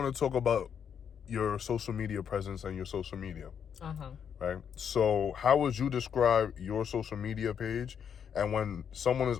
to talk about your social media presence and your social media. Uh-huh. Right? So, how would you describe your social media page? And when someone is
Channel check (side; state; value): right; quieter; 7.8 dB